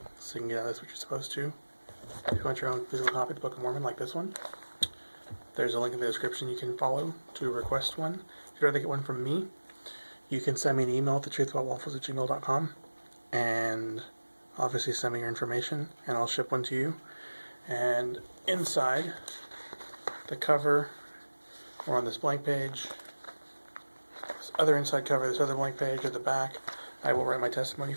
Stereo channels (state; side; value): inverted; both; correlation -1.00